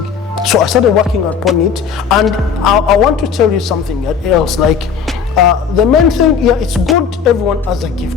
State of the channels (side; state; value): right; quieter; 6.6 dB